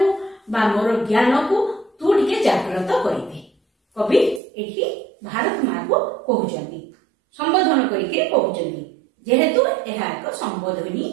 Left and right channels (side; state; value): left; drops out; at 4.4 s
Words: बा मोर ज्ञान को तू टिके जागृत करिदे कवि एठी भारत माँ को कहउचंदी संबोधन करिके कहउचंदी जेहेतु एहा एक संबोधनी